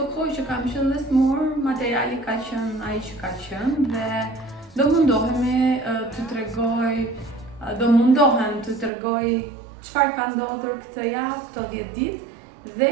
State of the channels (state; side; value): drops out; left; at 8.9 s